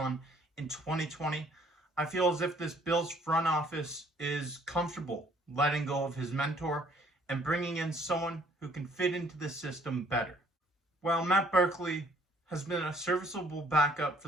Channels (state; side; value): normal; both; correlation 0.61